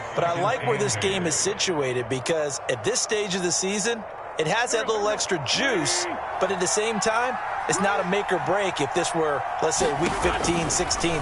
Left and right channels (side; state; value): both; identical; correlation 1.00